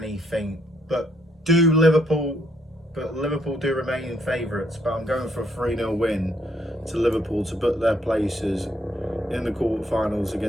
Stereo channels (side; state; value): both; normal; correlation 0.72